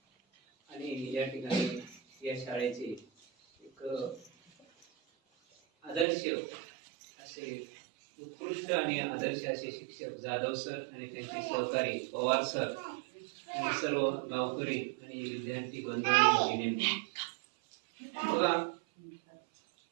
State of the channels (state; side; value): drops out; left; at 6.1 s